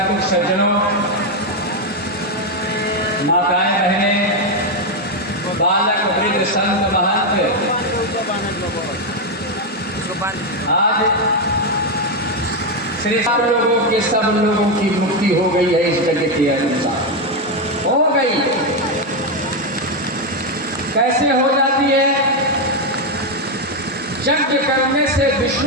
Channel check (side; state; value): both; normal; correlation 0.05